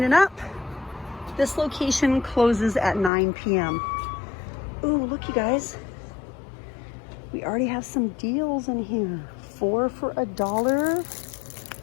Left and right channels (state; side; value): drops out; right; at 3.1 s